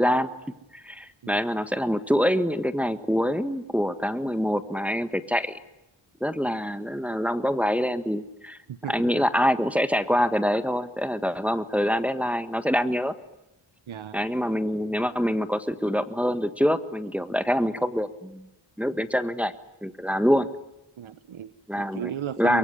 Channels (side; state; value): both; normal; correlation 0.89